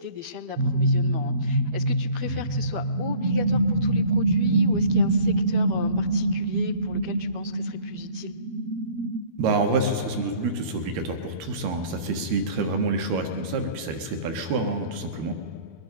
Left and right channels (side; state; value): left; late; 13 ms